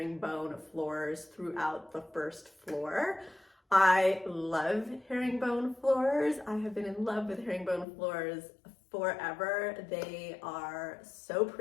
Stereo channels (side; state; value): right; drops out; at 7.9 s